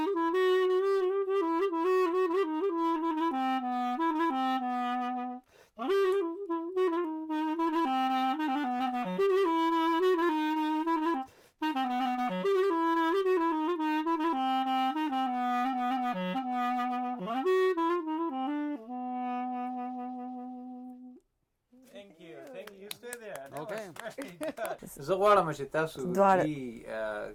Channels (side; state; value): both; identical; correlation 1.00